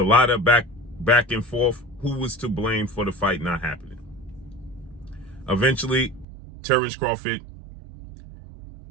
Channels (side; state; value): left; drops out; at 6.2 s